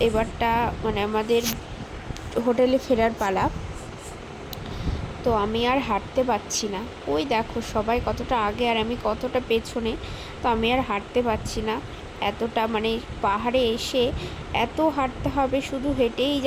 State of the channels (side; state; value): both; identical; correlation 1.00